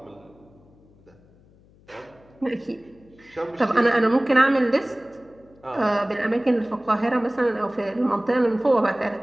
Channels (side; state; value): left; noise; hum, 28 dB below the sound